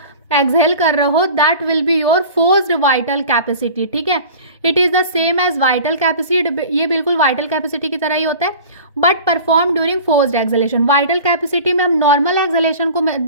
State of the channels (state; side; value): inverted; both; correlation -0.40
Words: एक्सहेल कर रहे हो, that will be your forced vital capacity, ठीक है। It is the same as vital capacity, ये बिल्कुल वाइटल कैपेसिटी की तरह ही होता है but perform during forced exhalation. Vital capacity में हम नॉर्मल एक्सहेलेशन को